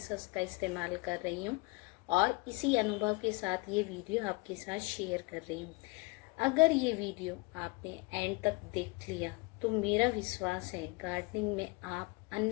हस्क का इस्तेमाल कर रही हूँ और इसी अनुभव के साथ ये वीडियो आपके साथ शेयर कर रही हूँ। अगर ये वीडियो आपने एंड तक देख लिया तो मेरा विश्वास है गार्डनिंग में आप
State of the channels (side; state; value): right; quieter; 25.4 dB